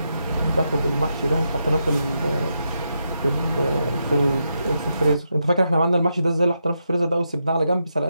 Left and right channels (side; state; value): both; inverted; correlation -0.84